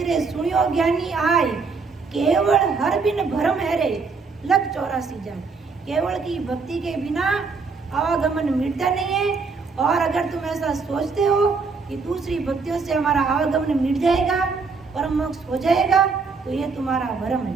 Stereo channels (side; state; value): left; quieter; 4.7 dB